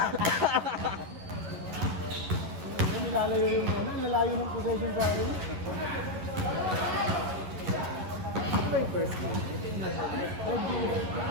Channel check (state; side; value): late; left; 11 ms